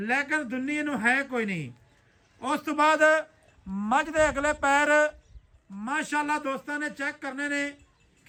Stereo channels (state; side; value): identical; both; correlation 1.00